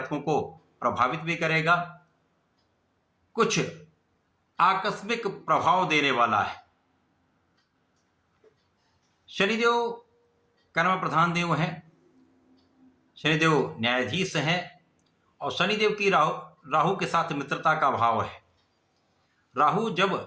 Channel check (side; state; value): both; identical; correlation 1.00